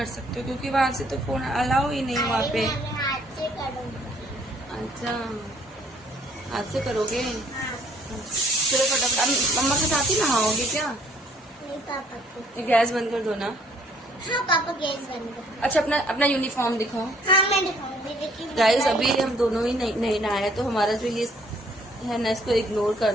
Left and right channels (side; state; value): both; normal; correlation 0.62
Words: सकते हो, क्योंकि वहाँ से तो फोन अलाउ ही नहीं वहाँ पे। मैं हाथ से करूंगी। अच्छा, हाथ से करोगे? हाँ। चलो फटाफट, मम्मा के साथ ही नहाओगे क्या? नहीं पापा को। गैस बंद कर दो ना। हाँ पापा गैस बंद कर। अच्छा, अपना यूनिफॉर्म दिखाओ। हाँ मैं दिखाऊंगी, लेकिन गाइस अभी हम दोनों ही नहीं नहाए, तो हमारा जो ये है ना, इसको इग्नोर